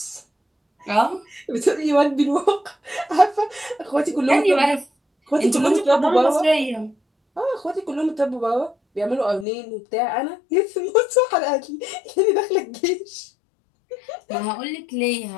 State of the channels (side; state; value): right; drops out; at 9.5 s